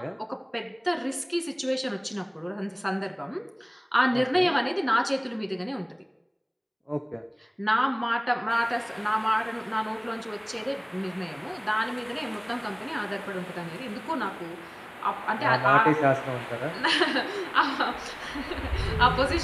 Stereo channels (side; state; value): both; identical; correlation 1.00